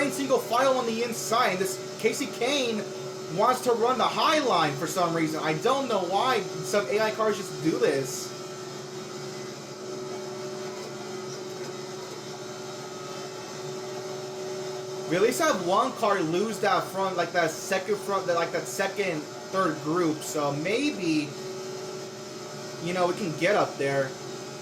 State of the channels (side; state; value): both; identical; correlation 1.00